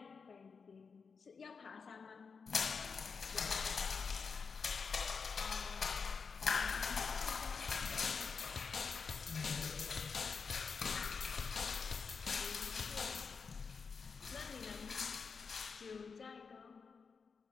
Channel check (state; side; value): quieter; right; 5.3 dB